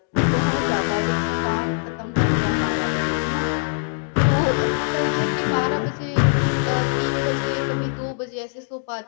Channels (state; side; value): silent; right; digital silence